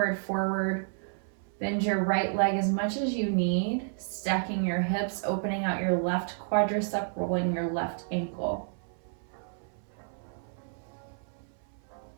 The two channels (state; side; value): silent; left; 57 dB below the other